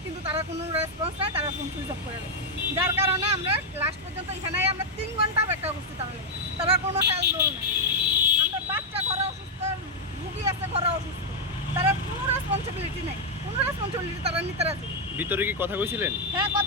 কিন্তু তারা কোনো রেসপন্স নেয়, তারা ফোন সুইচ অফ করে দেয়। যার কারণে আমরা লাস্ট পর্যন্ত এখানে আমরা 3 ঘন্টা অপেক্ষা করছি, তারা কোনো হেল্প দোল নেই। আমরা বাচ্চা ঘরে অসুস্থ, রুগী আছে ঘরে অসুস্থ, তারা কোনো রেসপন্সিবিলিটি নেই, কোনো রেসপন্সিবিলিটি তারা নিতে রাজি। ভিতরে কি কথা কইছিলেন? হ্যাঁ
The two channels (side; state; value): both; normal; correlation 0.00